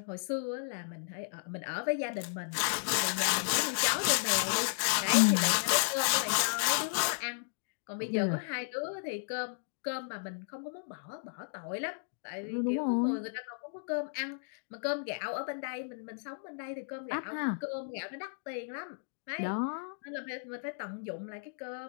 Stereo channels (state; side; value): silent; right; digital silence